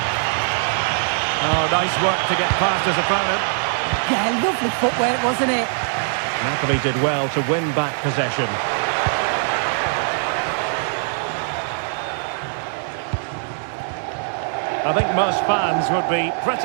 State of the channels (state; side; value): silent; left; digital silence